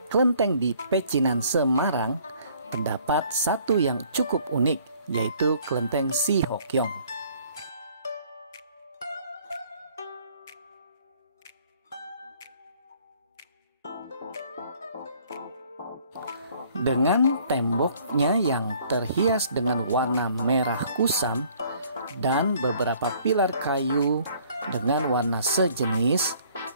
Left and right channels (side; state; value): both; inverted; correlation -0.59